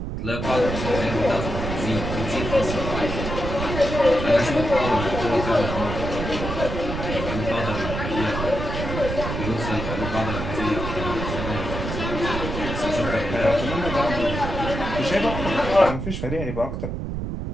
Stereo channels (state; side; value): noise; right; rumble, 4 dB below the sound